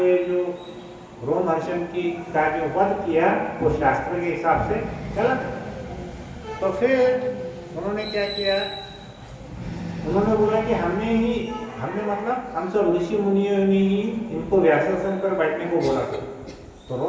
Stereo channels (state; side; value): identical; both; correlation 1.00